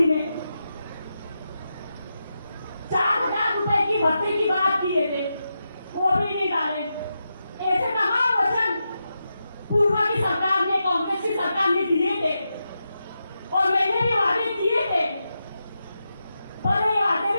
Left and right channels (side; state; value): both; inverted; correlation -0.88